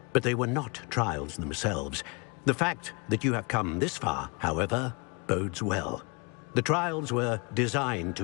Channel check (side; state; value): right; quieter; 31.4 dB